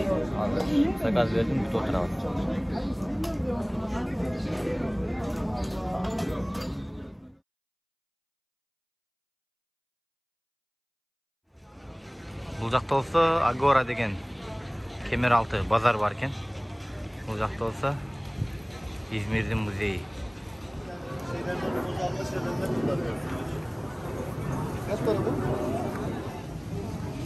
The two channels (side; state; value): both; identical; correlation 1.00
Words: Hazır. Sakaz verdim, bir oturalım. Bu жақта olsa Agora деген Kemeraltı bazar varken, bu жақта olsa İzmir'in müzeyi.